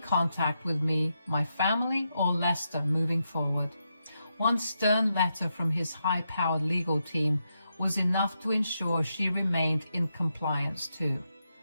with me, my family, or Lester moving forward. One stern letter from his high-powered legal team was enough to ensure she remained in compliance too.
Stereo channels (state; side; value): inverted; both; correlation -0.84